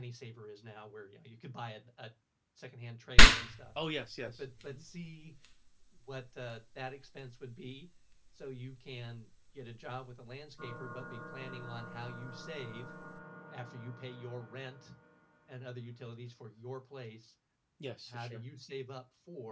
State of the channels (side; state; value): both; identical; correlation 1.00